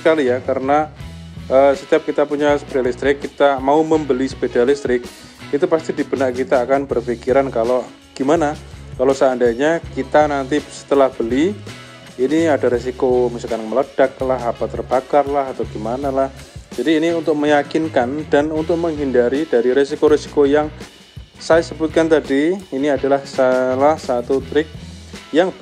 ya, karena setiap kita punya sepeda listrik, kita mau membeli sepeda listrik, itu pasti di benak kita akan berpikiran kalau gimana kalau seandainya kita nanti setelah beli ini ada resiko misalkan meledak lah, apa terbakar lah, atau gimana lah. Jadi ini untuk meyakinkan dan untuk menghindari dari resiko-resiko yang saya sebutkan tadi. Ini adalah salah satu trik yang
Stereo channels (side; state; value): both; identical; correlation 1.00